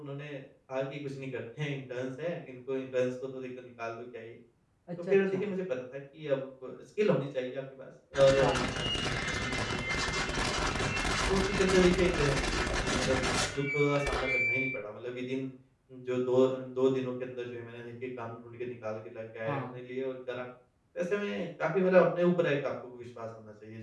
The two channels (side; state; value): both; identical; correlation 1.00